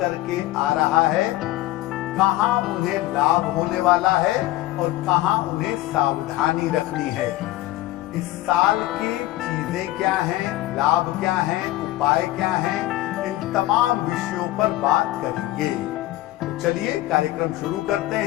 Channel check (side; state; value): right; quieter; 16.3 dB